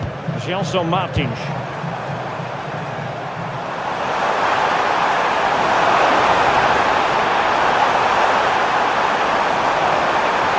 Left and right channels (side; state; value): both; identical; correlation 1.00